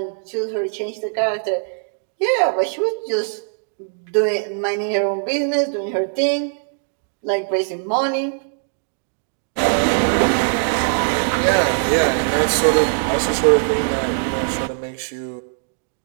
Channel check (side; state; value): left; silent; digital silence